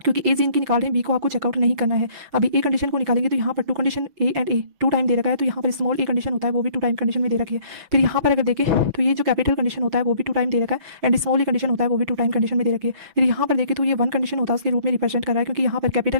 ए जीन की निकाल रहे हैं, बी को आपको चेकआउट नहीं करना है। अभी ए कंडीशन को निकालेंगे तो यहाँ पर 2 condition A and A 2 time दे रखा है, तो यहाँ पर स्मॉल ए कंडीशन होता है वो भी 2 टाइम कंडीशन में दे रखी है। फिर यहाँ पर अगर देखें तो ये जो कैपिटल कंडीशन होता है वो भी 2 टाइम दे रखा है, एंड स्मॉल ए कंडीशन होता है वो भी 2 टाइम कंडीशन में दे रखी है। फिर यहाँ पर देखें तो ये 1 कंडीशन होता है उसके रूप में रिप्रेजेंट कर रहा है, क्योंकि यहाँ पर कैपिटल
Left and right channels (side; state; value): left; late; 6.1 ms